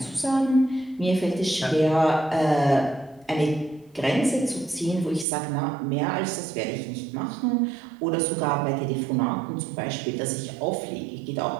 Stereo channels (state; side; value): drops out; left; at 5.2 s